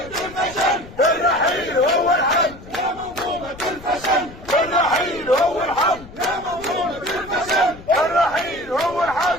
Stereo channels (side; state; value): left; noise; rumble, 18 dB below the sound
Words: الفشل الرحيل هو الحل. يا منظومة الفشل الرحيل هو الحل. يا منظومة الفشل الرحيل هو